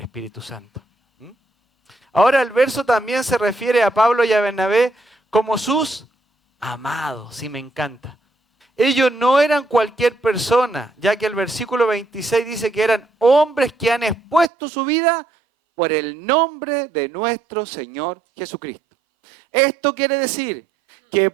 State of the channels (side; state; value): left; drops out; at 14.5 s